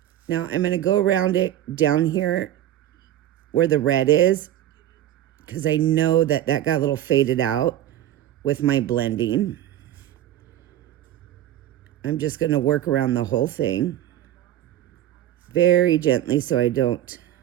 Now I'm going to go around it down here where the red is, because I know that that got a little faded out with my blending. I'm just going to work around the whole thing very gently so I don't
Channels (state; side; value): quieter; left; 12.4 dB